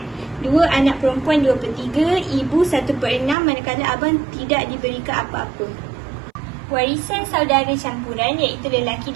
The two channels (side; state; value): left; drops out; at 3.4 s